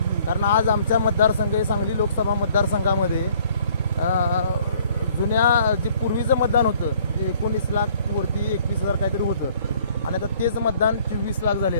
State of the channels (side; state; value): both; inverted; correlation -0.59